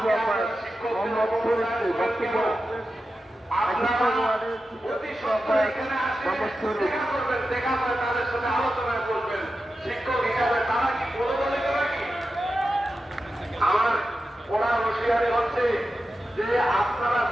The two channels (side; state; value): both; normal; correlation 0.91